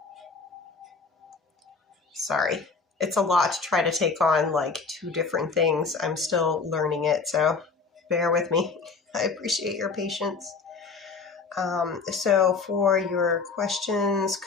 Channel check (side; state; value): right; quieter; 4.7 dB